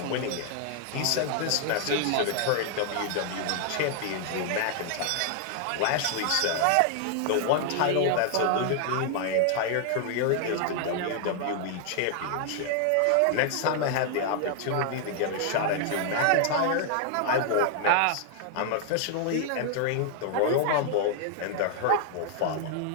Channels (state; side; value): different; both; correlation 0.00